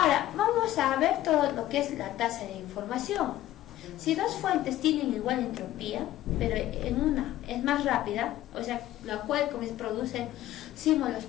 vamos a ver todo lo que es la tasa de información. Si dos fuentes tienen igual entropía, pero en una es más rápida, la cual como se producen símbolos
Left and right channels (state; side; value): quieter; right; 14.1 dB